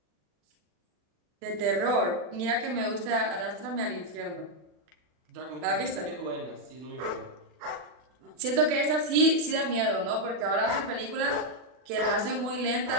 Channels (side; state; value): left; late; 40 ms